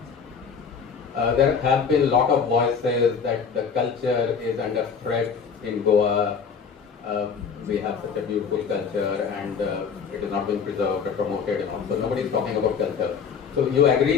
There have been a lot of voices that the culture is under threat in Goa. We have such a beautiful culture and it is not being preserved or promoted. So nobody is talking about culture. So you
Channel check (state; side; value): quieter; right; 6.2 dB